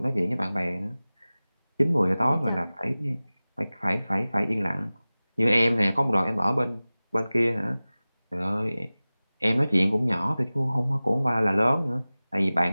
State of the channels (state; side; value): inverted; both; correlation -0.98